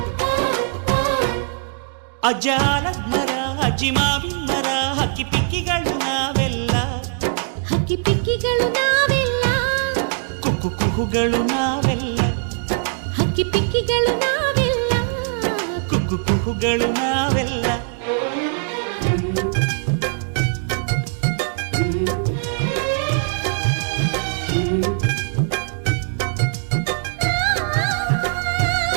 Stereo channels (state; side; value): silent; left; digital silence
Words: ಅಜ್ಜಾಲದ ಮರ ಅಜ್ಜಿ ಮಾವಿನ ಮರ ಹಕ್ಕಿ ಪಿಕ್ಕಿಗಳು ನಾವೆಲ್ಲ ಹಕ್ಕಿ ಪಿಕ್ಕಿಗಳು ನಾವೆಲ್ಲ ಕುಕ್ಕು ಕುಹುಗಳು ನಾವೆಲ್ಲ ಹಕ್ಕಿ ಪಿಕ್ಕಿಗಳು ನಾವೆಲ್ಲ ಕುಕ್ಕು ಕುಹುಗಳು ನಾವೆಲ್ಲ